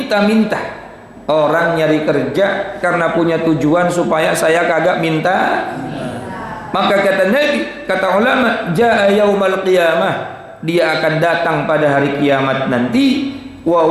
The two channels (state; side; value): identical; both; correlation 1.00